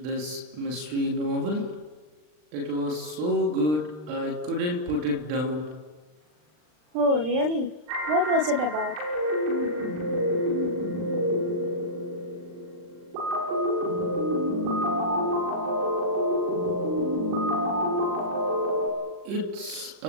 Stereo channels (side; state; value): left; late; 39 ms